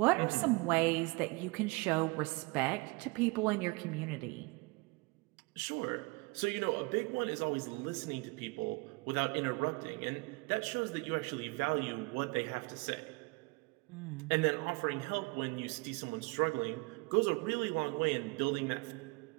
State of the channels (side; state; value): left; quieter; 27.0 dB